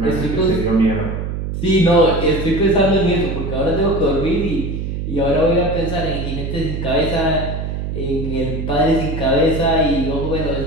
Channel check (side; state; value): right; noise; hum, 4 dB below the sound